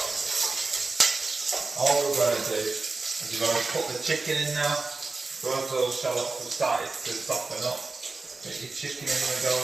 All we're going to do is we're going to put the chicken in now. So as those shallots have started to soften up, get your chicken in the go.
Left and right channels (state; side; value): quieter; left; 3.7 dB